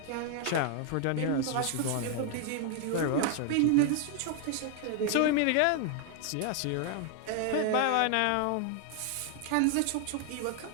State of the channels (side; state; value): both; different; correlation 0.00